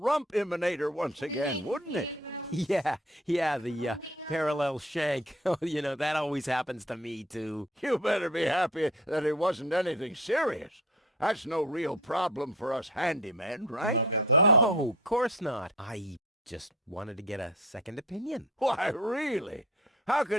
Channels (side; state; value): both; normal; correlation 0.43